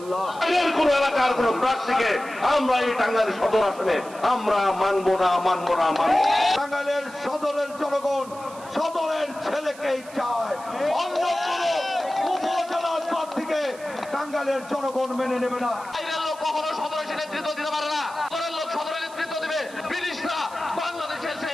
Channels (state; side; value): noise; right; hiss, 20 dB below the sound